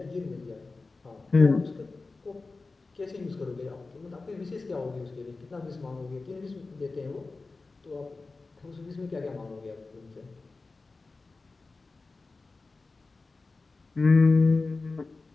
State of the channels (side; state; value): right; quieter; 3.7 dB